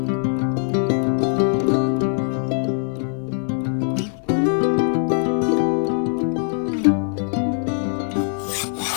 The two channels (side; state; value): right; silent; digital silence